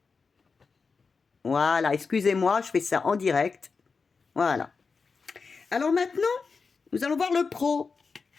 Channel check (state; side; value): quieter; right; 4.9 dB